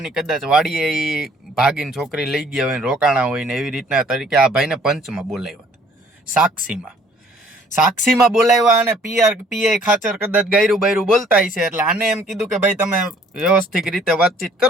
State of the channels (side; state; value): both; normal; correlation 0.58